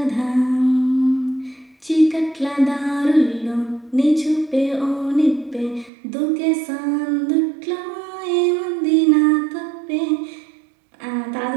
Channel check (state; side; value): drops out; left; at 5.9 s